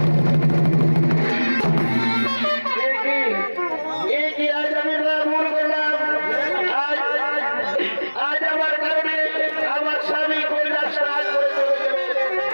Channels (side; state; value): both; inverted; correlation -1.00